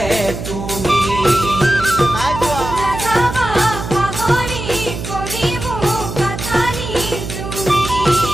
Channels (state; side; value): noise; right; hum, 7 dB below the sound